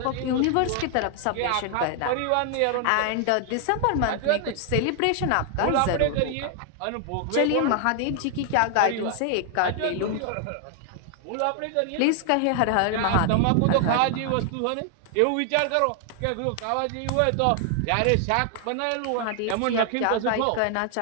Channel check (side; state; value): both; different; correlation 0.00